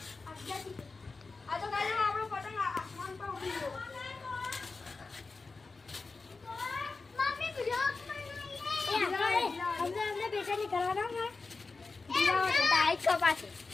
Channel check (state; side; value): quieter; right; 4.0 dB